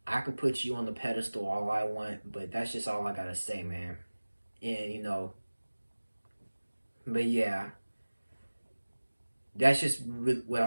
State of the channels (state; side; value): inverted; both; correlation -1.00